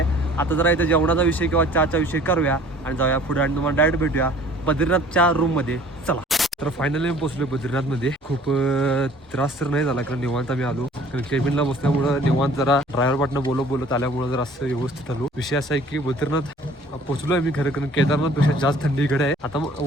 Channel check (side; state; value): both; normal; correlation 0.52